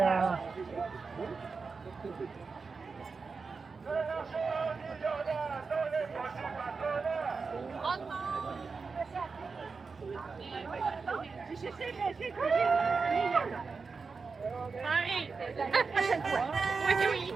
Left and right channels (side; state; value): left; quieter; 4.7 dB